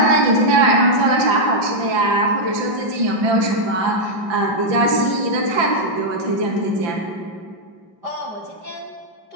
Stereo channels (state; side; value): late; left; 5.9 ms